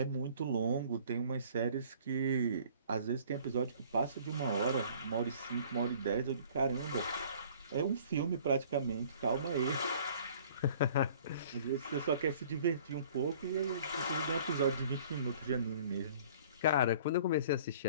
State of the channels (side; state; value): both; inverted; correlation -0.52